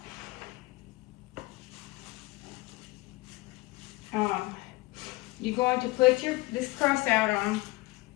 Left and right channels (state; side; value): quieter; right; 21.5 dB